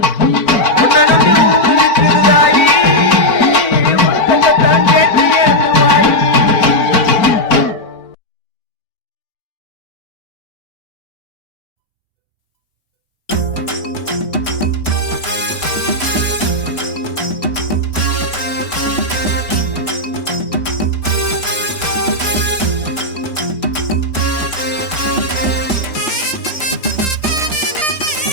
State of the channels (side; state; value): right; late; 4.3 ms